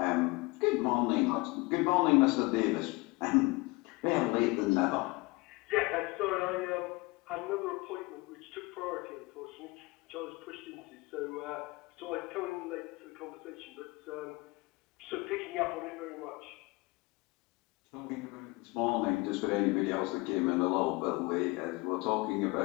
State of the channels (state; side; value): quieter; right; 24.4 dB